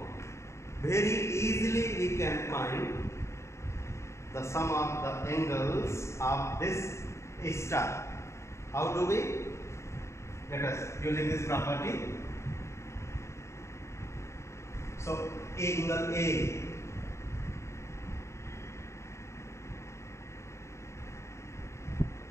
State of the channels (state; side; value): late; right; 0.14 ms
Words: very easily we can find the sum of the angles of this star. How do we? Let us using this property. So angle A